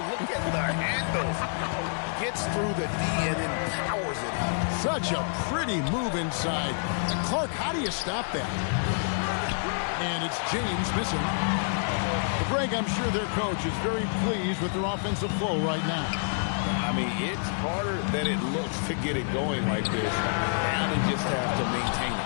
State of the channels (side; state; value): right; silent; 59 dB below the other